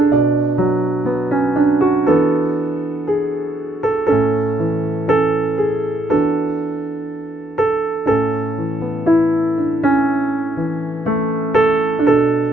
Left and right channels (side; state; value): both; normal; correlation 0.73